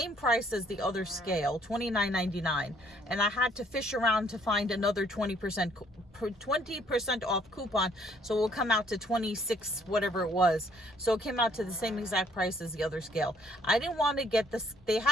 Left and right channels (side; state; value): both; normal; correlation 0.63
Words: price as the other scale, $29.99, and I had to fish around to find another 20% off coupon, so it will come out to 26 whatever it was. So it came out to the same exact price as the other scale. I didn't want to get this. They